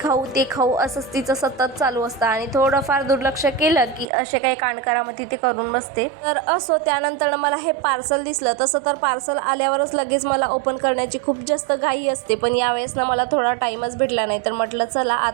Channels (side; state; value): left; drops out; at 4.0 s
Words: ते खाऊ असंच तिचं सतत चालू असतं आणि थोडंफार दुर्लक्ष केलं की असे काही कांडकरामध्ये ते करून बसते. तर असो, त्यानंतर मला हे पार्सल दिसलं. तसं तर पार्सल आल्यावरच लगेच मला ओपन करण्याची खूप जास्त घाई असते, पण यावेळेस ना मला थोडा टाइमच भेटला नाही. तर म्हटलं चला